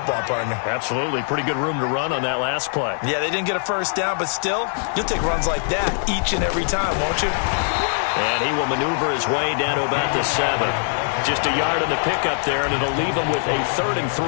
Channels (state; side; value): silent; right; 56 dB below the other